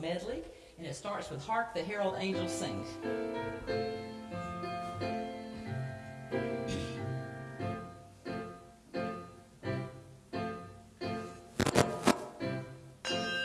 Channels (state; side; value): identical; both; correlation 1.00